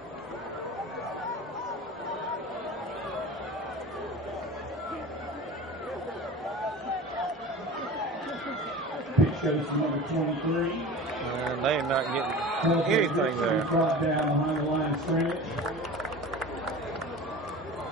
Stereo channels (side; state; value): both; normal; correlation 0.36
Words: Pitch goes to number 23. And they are not getting anything there. Brought down behind the line of scrimmage.